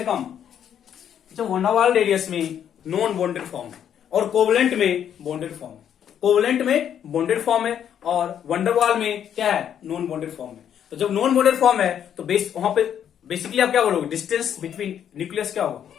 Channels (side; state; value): right; quieter; 9.3 dB